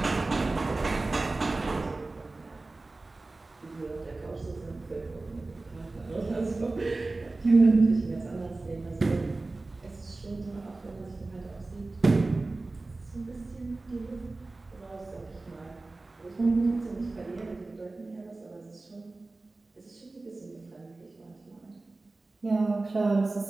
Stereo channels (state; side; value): quieter; left; 3.3 dB